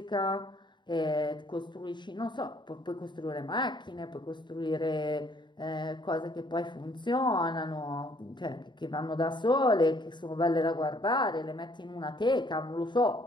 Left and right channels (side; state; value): right; late; 0.22 ms